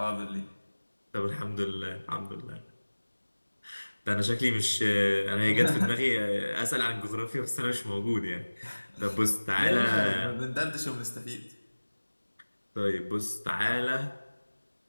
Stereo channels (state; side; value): inverted; both; correlation -1.00